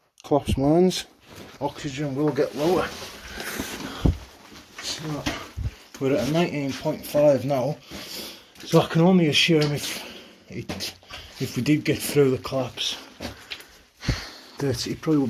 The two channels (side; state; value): both; identical; correlation 1.00